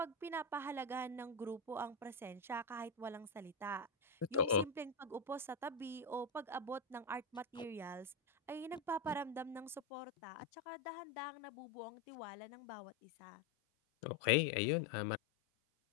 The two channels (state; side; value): drops out; right; at 9.8 s